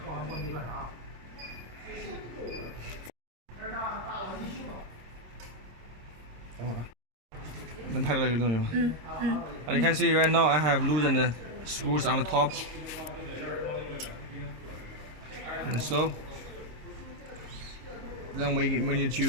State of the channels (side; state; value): left; late; 26 ms